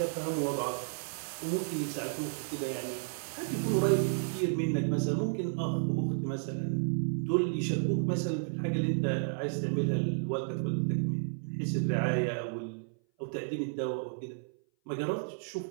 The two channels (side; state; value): left; silent; 56 dB below the other